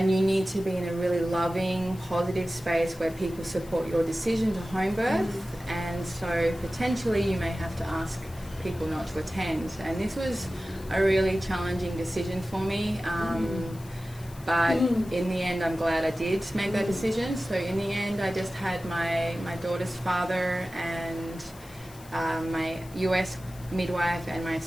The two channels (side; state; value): left; noise; hiss, 22 dB below the sound